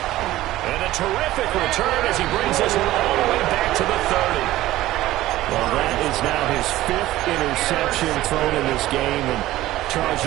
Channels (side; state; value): left; quieter; 15.8 dB